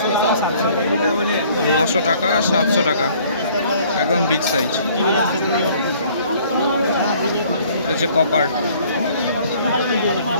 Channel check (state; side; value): inverted; both; correlation -0.57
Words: 900 টাকা, 700 টাকা, একদম বিগ সাইজ। এটা হচ্ছে কপার।